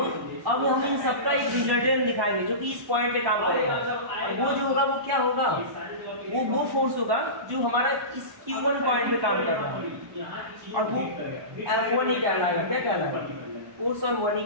अब हम इन सबका एक रिजल्टेंट दिखाएंगे जो कि इस पॉइंट पे काम करेगा, और वो जो होगा वो क्या होगा, वो फोर्स होगा जो हमारा इस Q1 पॉइंट पे काम कर रहा है, और वो F1 ही कहलाएगा। क्या कहलाएगा, फोर्स ऑन 1 ही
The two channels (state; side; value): late; left; 1.2 ms